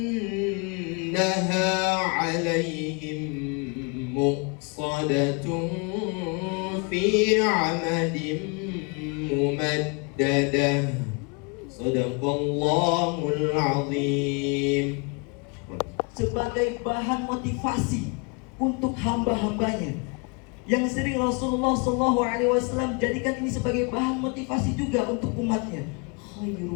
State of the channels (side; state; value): right; quieter; 32.8 dB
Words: إنها عليهم مؤصدة في عمد ممددة. صدق الله العظيم. Sebagai bahan motivasi untuk hamba-hambanya yang sering Rasulullah SAW jadikan ini sebagai bahan motivasi juga untuk umatnya.